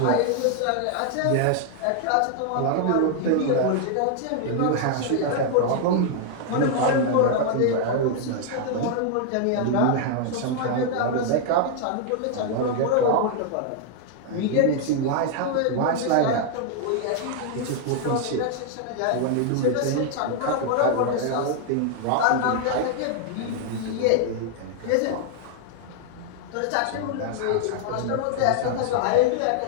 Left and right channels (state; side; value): different; both; correlation 0.00